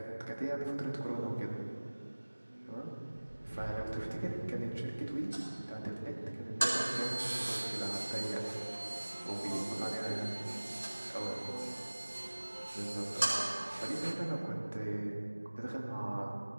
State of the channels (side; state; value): both; inverted; correlation -1.00